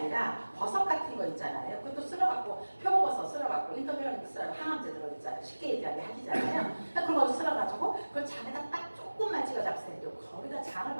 버섯 같은 거 있잖아요. 그것도 쓸어갖고 표고버섯 쓸어갖고 인터뷰하는 거 쓸어 항암제 들어있잖아요. 쉽게 얘기하게 하시잖아요. 그러니까 그런 거 쓸어가지고 그걸 잔에다 딱 조금만 찍어 잡으세요. 거기다 장을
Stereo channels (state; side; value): inverted; both; correlation -1.00